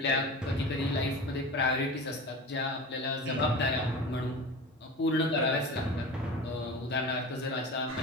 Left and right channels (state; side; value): normal; both; correlation 0.31